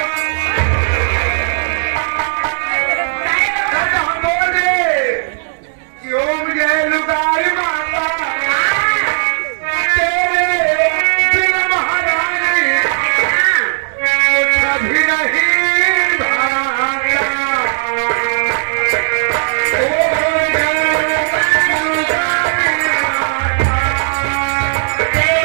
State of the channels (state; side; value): silent; left; digital silence